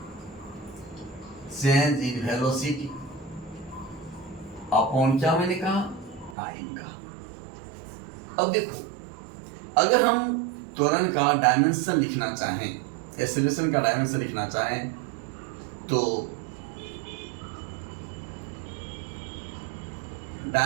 वेलोसिटी अपॉन क्या मैंने कहा, टाइम का। अब देखो, अगर हम त्वरण का डायमेंशन लिखना चाहें, एक्सीलरेशन का डायमेंशन लिखना चाहें, तो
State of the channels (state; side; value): drops out; left; at 6.4 s